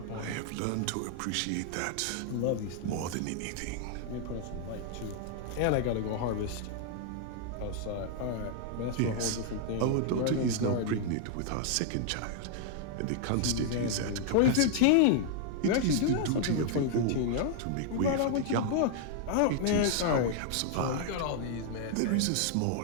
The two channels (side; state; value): both; different; correlation 0.00